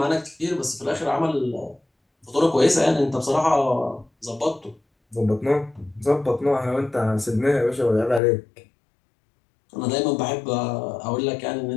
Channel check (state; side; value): drops out; right; at 8.2 s